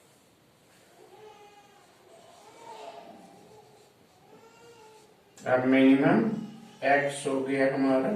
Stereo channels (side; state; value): both; identical; correlation 1.00